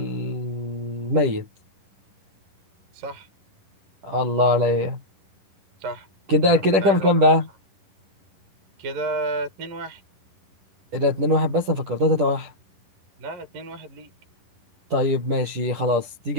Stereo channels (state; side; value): late; left; 10 ms